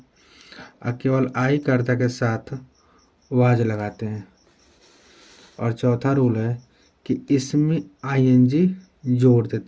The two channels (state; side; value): identical; both; correlation 1.00